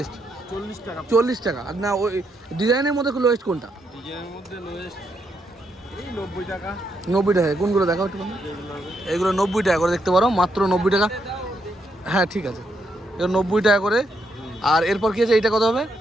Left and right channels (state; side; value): normal; both; correlation 0.78